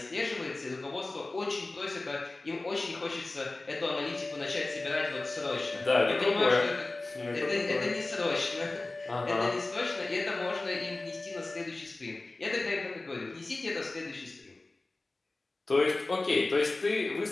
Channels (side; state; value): right; quieter; 3.1 dB